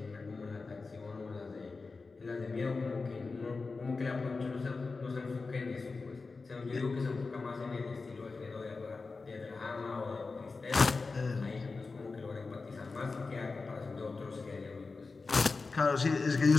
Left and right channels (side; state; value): right; quieter; 4.1 dB